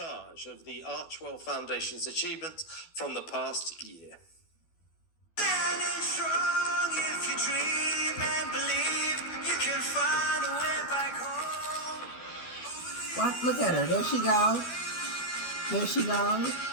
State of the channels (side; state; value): right; late; 12 ms